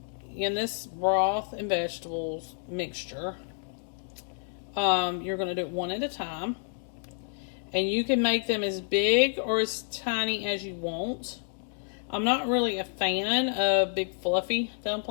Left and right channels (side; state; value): right; silent; digital silence